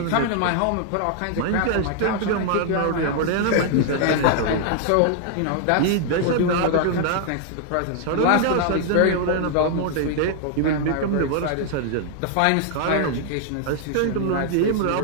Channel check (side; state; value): both; different; correlation 0.00